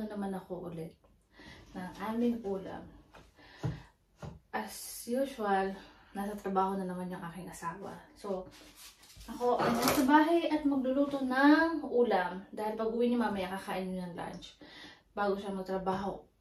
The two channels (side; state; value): both; identical; correlation 1.00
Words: naman ako ulit ng aming ulam. As usual, nasa trabaho na naman yung aking asawa. So, ako ay nasa bahay at magluluto ng ulam. Dahil pag uwi niyo mamaya, kakain niyo ng lunch. Bago siya magtrabaho